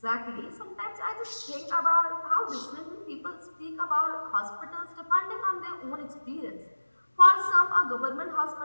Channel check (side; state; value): both; inverted; correlation -1.00